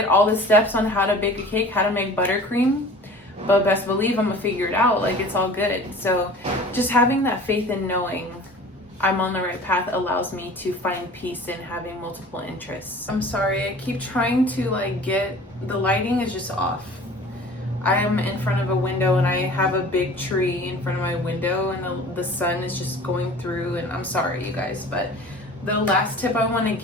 all the steps on how to bake a cake, how to make buttercream, but best believe I'm gonna figure it out. Like, it's all good. So just having that faith and knowing I'm on the right path allows me to find peace in having multiple interests. I'm sorry, I keep trying to the lighting is just off. I am in front of a window and I have a big tree in front of my window and the sun is just going through, and I'm sorry you guys, but the last tip I want to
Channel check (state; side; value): normal; both; correlation 0.43